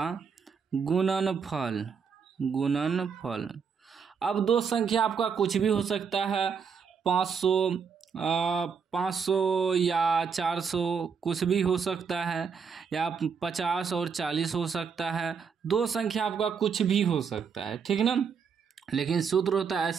गुणनफल। अब दो संख्या आपका कुछ भी हो सकता है, 500 या 400 कुछ भी हो सकता है, या 50 और 40 हो सकता है। दो संख्या आपका कुछ भी हो सकता है, ठीक ना। लेकिन सूत्र होता है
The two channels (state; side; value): quieter; left; 6.2 dB